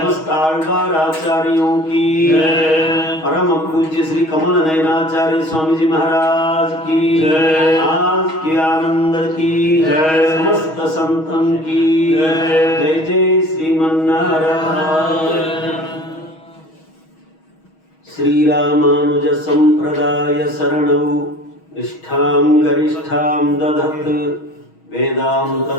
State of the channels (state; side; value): late; right; 6.3 ms